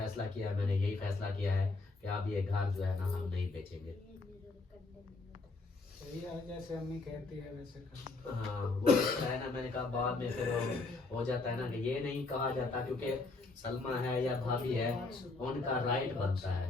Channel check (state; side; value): quieter; right; 3.6 dB